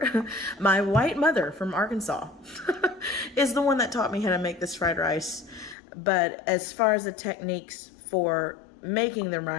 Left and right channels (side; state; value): right; drops out; at 5.8 s